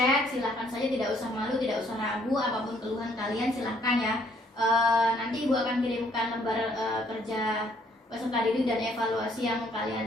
silakan saja, tidak usah malu, tidak usah ragu, apapun keluhan kalian silakan ya. Nanti ibu akan kirimkan lembar kerja peserta didik dan evaluasi yang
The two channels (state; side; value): normal; both; correlation 0.65